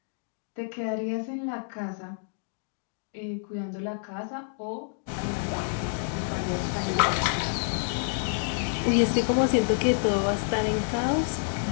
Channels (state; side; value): silent; right; digital silence